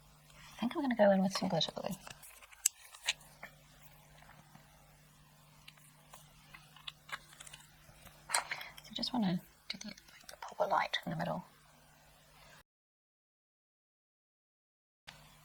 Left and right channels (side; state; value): both; identical; correlation 1.00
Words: think I'm going to go in with some glitter glue. So I just want to do the proper light in the middle.